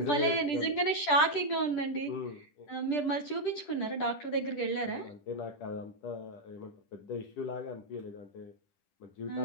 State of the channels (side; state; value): right; late; 10 ms